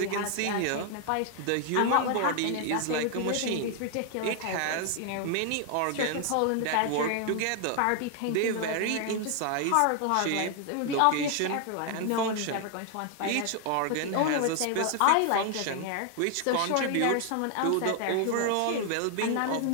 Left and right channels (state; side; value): different; both; correlation 0.00